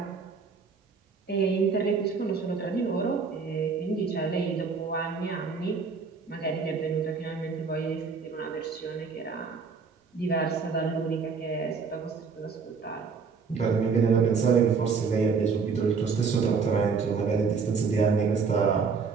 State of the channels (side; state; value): left; quieter; 5.2 dB